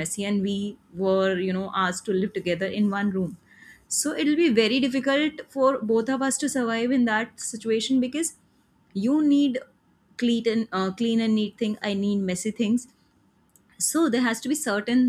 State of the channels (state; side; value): identical; both; correlation 1.00